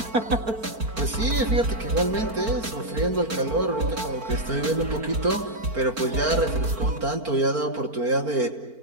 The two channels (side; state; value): left; late; 4.4 ms